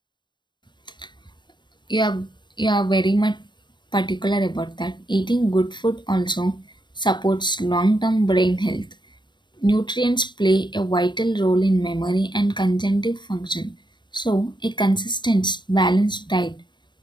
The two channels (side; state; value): right; late; 0.22 ms